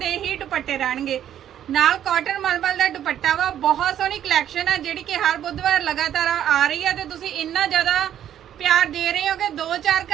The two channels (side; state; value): left; quieter; 10.6 dB